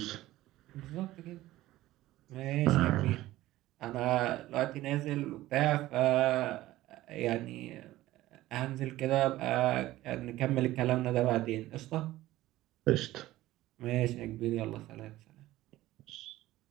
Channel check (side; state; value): left; quieter; 16.1 dB